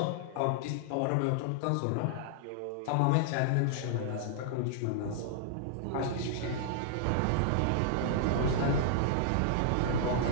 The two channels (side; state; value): both; different; correlation -0.01